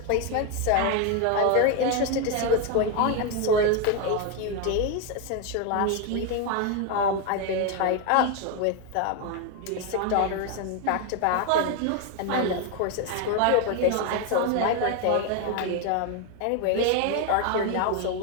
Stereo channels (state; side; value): different; both; correlation 0.02